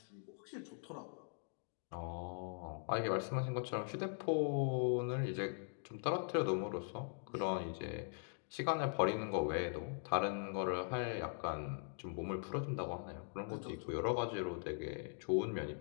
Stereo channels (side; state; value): right; silent; digital silence